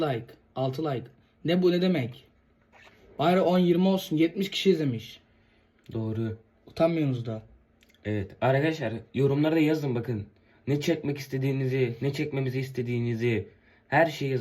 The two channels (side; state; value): both; identical; correlation 1.00